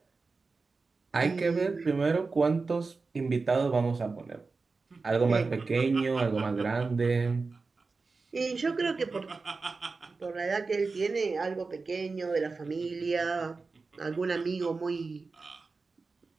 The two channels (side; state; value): left; quieter; 4.1 dB